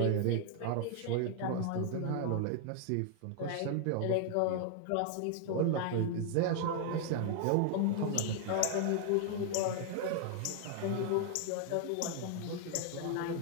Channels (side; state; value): both; different; correlation 0.00